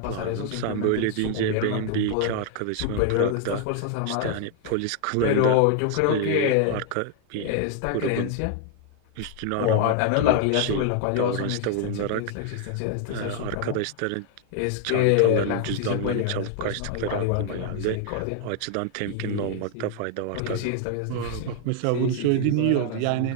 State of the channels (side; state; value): both; different; correlation 0.00